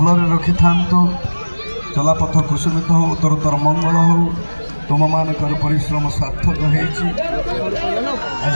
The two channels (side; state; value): both; inverted; correlation -1.00